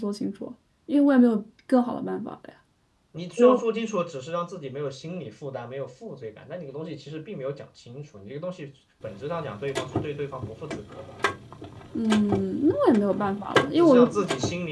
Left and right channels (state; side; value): identical; both; correlation 1.00